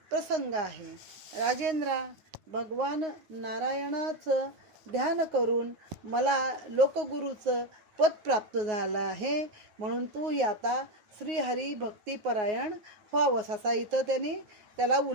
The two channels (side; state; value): left; late; 9.5 ms